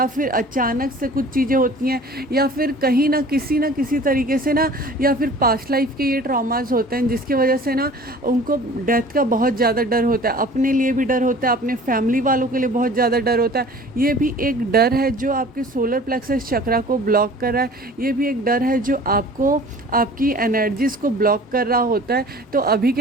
फिर अचानक से कुछ चीज़ें होती हैं, या फिर कहीं ना किसी तरीके से ना, या फिर पास्ट लाइफ के ये ट्रॉमास होते हैं, जिसकी वजह से ना उनको डेथ का बहुत ज़्यादा डर होता है। अपने लिए भी डर होता है, अपने फैमिली वालों के लिए बहुत ज़्यादा डर होता है। ये भी एक डर है जो आपके सोलर प्लेक्सस चक्रा को ब्लॉक कर रहा है, ये भी एक डर है जो आपको आपकी एनर्जीज़ को ब्लॉक कर रहा होता है। तो अभी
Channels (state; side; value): normal; both; correlation 0.46